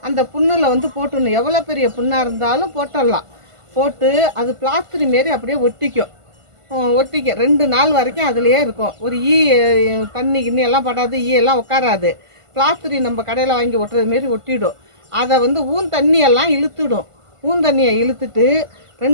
அந்த புண்ணில் வந்து போட்டுடணும். எவ்வளோ பெரிய புண்ணாக இருந்தாலும் போட்டுடலாம். போட்டு அது பிளாஸ்டரி மாரி அப்படியே ஒட்டிக்கும். 2 நாள் வரைக்கும் அதுலேயே இருக்கும். ஒரு தண்ணி கிண்ணி எல்லாம் படாது, எல்லாம் உட்காராது. பிளாஸ்டரி நம்ம கடையில் வாங்கி ஒட்டுறது மாரி ஒட்டிடும். அதை வந்து தண்ணியெல்லாம் இழுத்துடும். தண்ணியை இழுத்துட்டு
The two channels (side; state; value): left; late; 1.5 ms